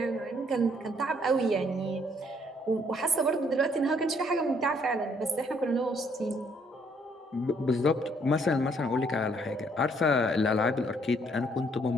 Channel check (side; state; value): both; normal; correlation 0.66